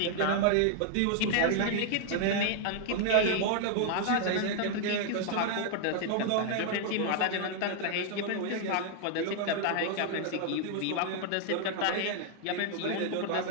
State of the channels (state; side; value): different; both; correlation 0.00